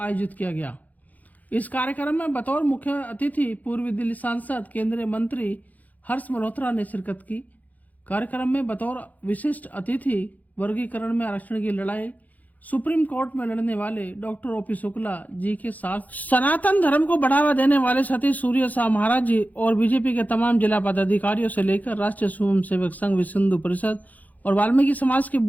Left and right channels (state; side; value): late; right; 0.079 ms